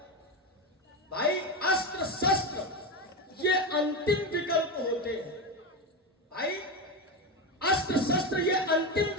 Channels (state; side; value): normal; both; correlation 0.16